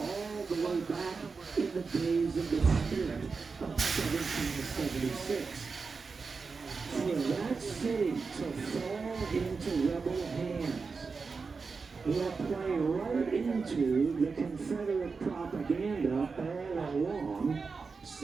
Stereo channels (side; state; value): left; quieter; 4.7 dB